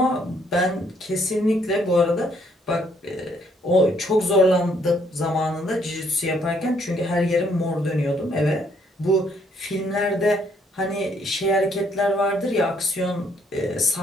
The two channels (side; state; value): both; normal; correlation 0.68